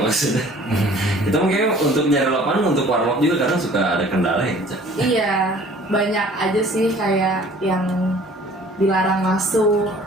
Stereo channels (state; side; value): normal; both; correlation 0.51